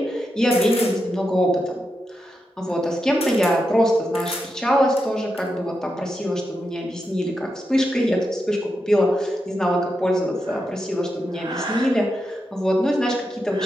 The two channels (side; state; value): both; normal; correlation 0.86